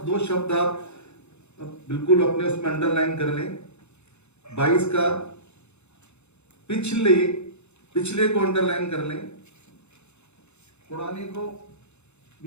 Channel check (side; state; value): right; late; 0.81 ms